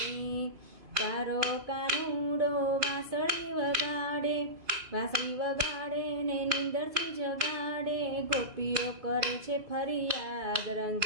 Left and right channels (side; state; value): left; late; 2.5 ms